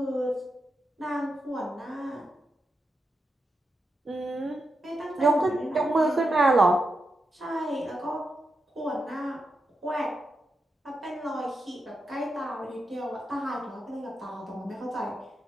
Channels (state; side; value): normal; both; correlation 0.86